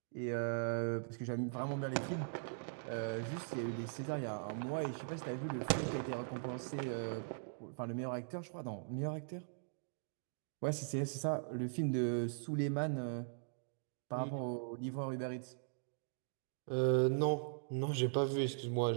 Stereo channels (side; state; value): left; silent; digital silence